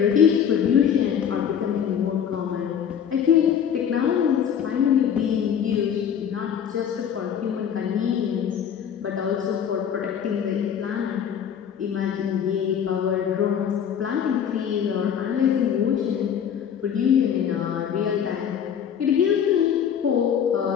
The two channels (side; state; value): right; quieter; 8.4 dB